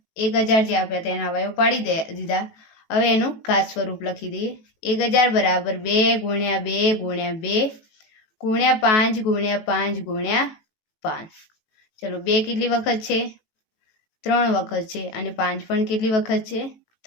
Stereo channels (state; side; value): late; right; 18 ms